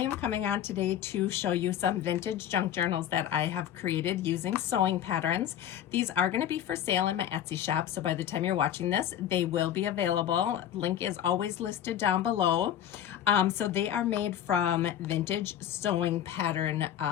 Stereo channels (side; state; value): right; quieter; 10.5 dB